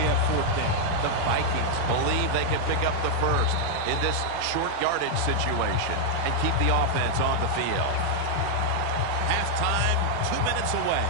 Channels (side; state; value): both; different; correlation -0.01